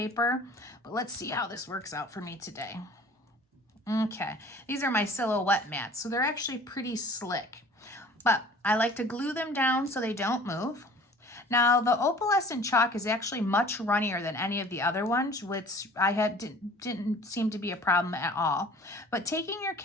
But let's see how this works out for me today. Okay, these are my silhouette mats, so they're actually pretty slick. But I like to glue them down so they don't move. Now, the opalescent chalk is actually much runnier than any of the other ones, which didn't seem to be a problem at all. But taking your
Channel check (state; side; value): normal; both; correlation 0.48